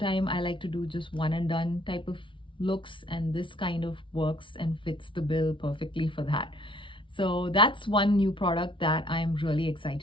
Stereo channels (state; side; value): late; right; 0.25 ms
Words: I like to do just one and done type of looks, and this kind of works and fits the bill perfectly for that. So that's one new product that I'm really